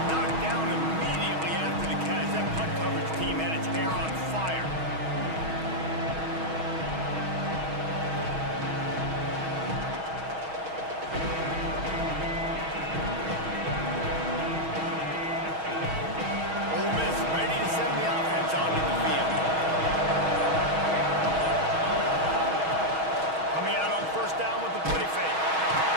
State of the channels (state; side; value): late; left; 6.3 ms